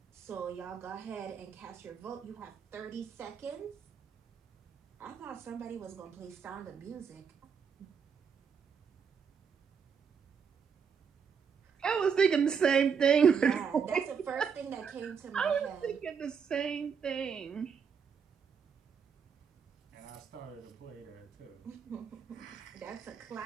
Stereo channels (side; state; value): left; quieter; 6.5 dB